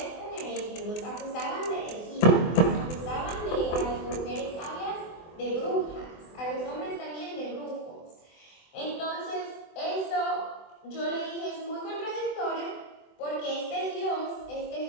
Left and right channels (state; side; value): late; right; 24 ms